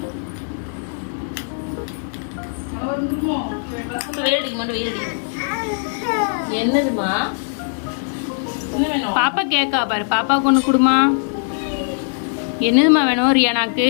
என்னதுமா? பாப்பா கேக்கா பாரு. பாப்பாவுக்கு ஒன்று கொடுமா. என்னதுமா வேணும் ரியானாக்கு?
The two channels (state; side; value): silent; right; 59 dB below the other